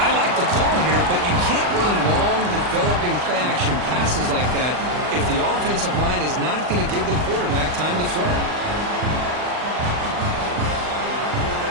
like the call here, but you can't run long, developing play-action passes like that if the offensive line is not going to give the quarterback time to throw.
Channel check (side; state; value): left; late; 39 ms